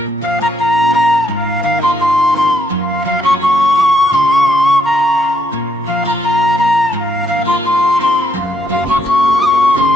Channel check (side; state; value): both; normal; correlation 0.73